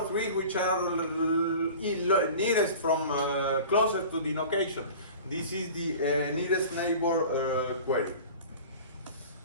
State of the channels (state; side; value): inverted; both; correlation -0.39